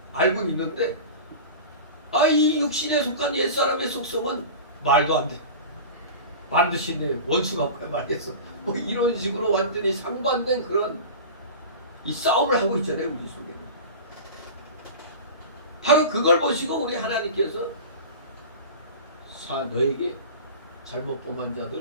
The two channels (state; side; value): inverted; both; correlation -0.32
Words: 알고 있는데 이 육신에 속한 옛사람의 속성은 말도 안 돼. 반드시 내 원수가 뭐야 말겠어. 뭐 이런 식으로 완전히 상반된 그런 이 싸움을 하고 있잖아요, 우리 속에는. 바로 그걸 보시고 우리 하나님께서 너에게 잘못 범한